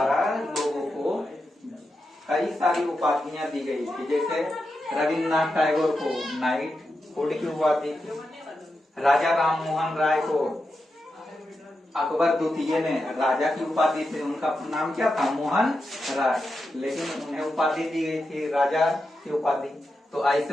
लोगों को कई सारी उपाधियां दी गई थी। जैसे रविन्द्रनाथ टैगोर को नाइटहुड की उपाधि थी, राजा राम मोहन राय को अकबर द्वितीय ने राजा की उपाधि थी। उनका नाम क्या था, मोहन राय, लेकिन उन्हें उपाधि दी गई थी राजा की उपाधि। तो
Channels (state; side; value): normal; both; correlation 0.88